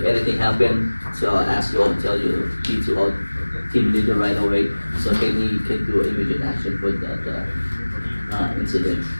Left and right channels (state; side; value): inverted; both; correlation -1.00